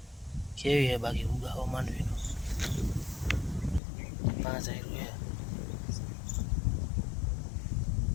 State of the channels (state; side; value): drops out; right; at 3.8 s